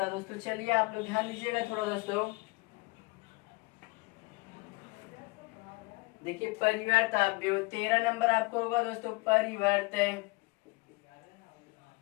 है दोस्तों, चलिए आप लोग ध्यान दीजिएगा थोड़ा दोस्तों। देखिए परिवर्त अवयव 13 नंबर आपको होगा दोस्तों। परिवर्त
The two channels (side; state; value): right; quieter; 24.3 dB